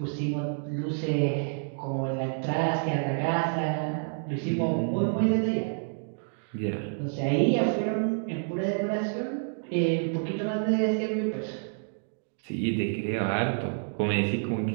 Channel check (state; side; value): silent; left; digital silence